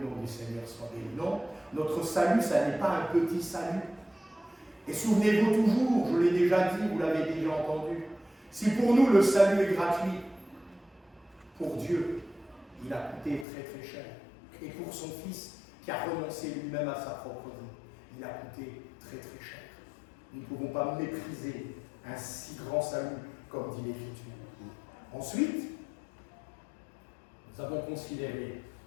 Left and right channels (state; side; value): drops out; right; at 13.5 s